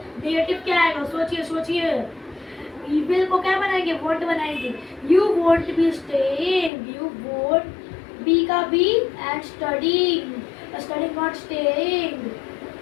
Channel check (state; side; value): drops out; right; at 6.7 s